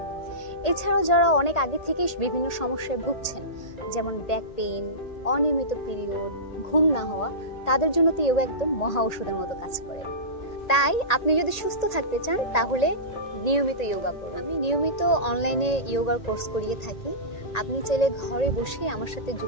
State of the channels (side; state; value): right; late; 1.8 ms